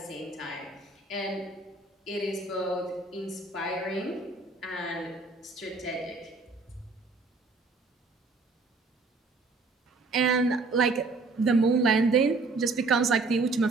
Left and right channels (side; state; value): left; quieter; 3.7 dB